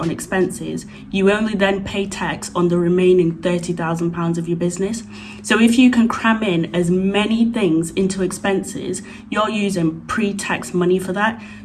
on expenses, you only then pay tax on the remaining £30,000 of your business. So if you can cram in as many things into expenses, you're using pre-tax money for that.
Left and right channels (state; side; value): identical; both; correlation 1.00